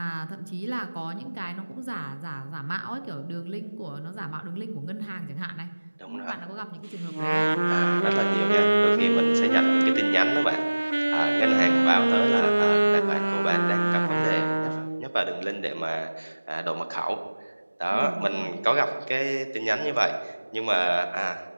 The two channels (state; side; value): inverted; both; correlation -1.00